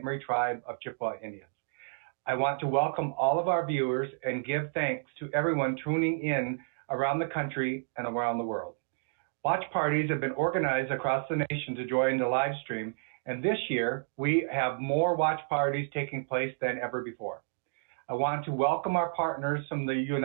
Marie tribe of Chippewa Indians. I want to welcome all of our viewers and give thanks to everyone tuning in around the country and around the world. Watch parties have been organized across the nation to join the live stream, and this year we have more watch parties taking place than ever before. I want to welcome our partners from the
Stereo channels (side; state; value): left; silent; digital silence